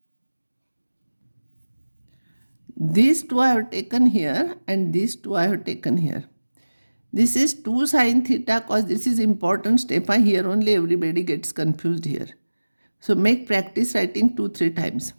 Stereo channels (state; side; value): inverted; both; correlation -1.00